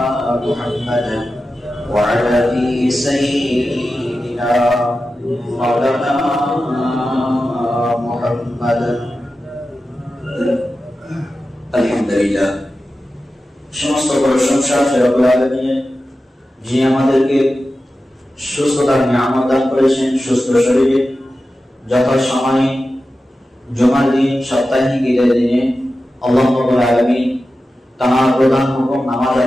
محمد وعلى سيدنا مولانا محمد আলহামদুলিল্লাহ। সমস্ত প্রশংসা রব্বুল আলামিনের, যিনি আমাদেরকে সুস্থতার নিয়ামত দান করেছেন। সুস্থ শরীরে যথাসময়ে জুমার দিন সাপ্তাহিক ঈদের দিনে আল্লাহ রাব্বুল আলামিন তার প্রধান হুকুম নামাজ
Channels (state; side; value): normal; both; correlation 0.93